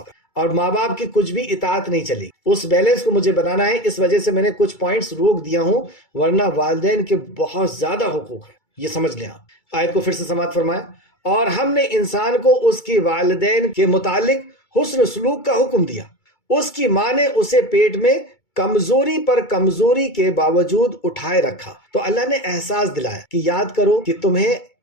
کا، اور ماں باپ کی کچھ بھی اطاعت نہیں چلے گی۔ اس بیلنس کو مجھے بنانا ہے، اس وجہ سے میں نے کچھ پوائنٹس روک دیا ہوں، ورنہ والدین کے بہت زیادہ حقوق ہیں، یہ سمجھ لیں آپ۔ آیت کو پھر سے سماعت فرمائیں، اور ہم نے انسان کو اس کی والدین کے متعلق حسن سلوک کا حکم دیا، اس کی ماں نے اسے پیٹ میں کمزوری پر کمزوری کے باوجود اٹھائے رکھا، تو اللہ نے احساس دلایا کہ یاد کرو کہ تمہیں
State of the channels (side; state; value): right; late; 2.3 ms